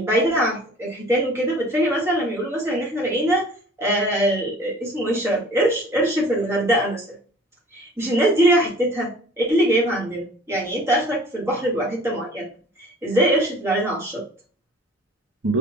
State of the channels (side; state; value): both; normal; correlation 0.48